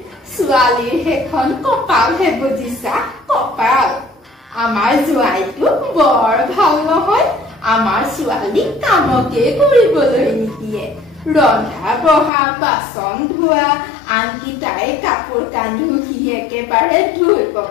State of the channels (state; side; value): drops out; right; at 12.3 s